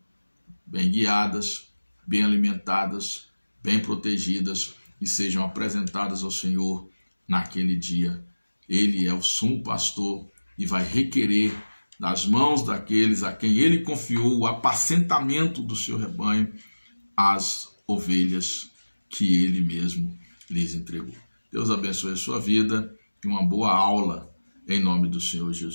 bem guiadas, bem alimentadas, bem protegidas, e sejam apresentadas ao Senhor naquele dia. Ele é o sumo pastor e vai requerer das mãos daqueles a quem ele confiou o apacentamento do seu rebanho, as ovelhas que ele mesmo lhes entregou. Deus abençoe a sua vida e uma boa aula em nome do Senhor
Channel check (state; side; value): inverted; both; correlation -1.00